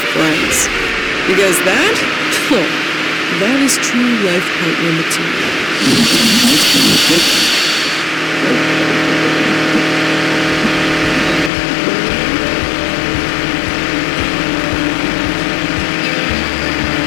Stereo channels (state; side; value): drops out; right; at 11.5 s